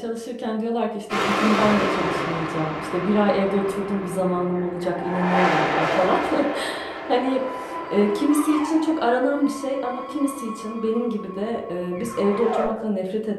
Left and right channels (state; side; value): identical; both; correlation 1.00